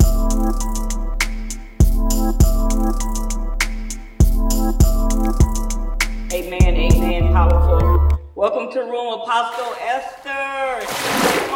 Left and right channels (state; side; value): identical; both; correlation 1.00